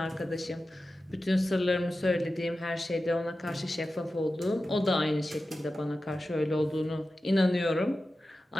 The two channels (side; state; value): both; normal; correlation 0.93